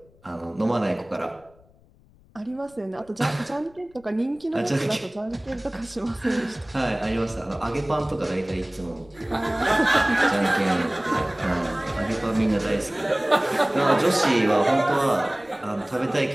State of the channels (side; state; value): left; noise; rumble, 28 dB below the sound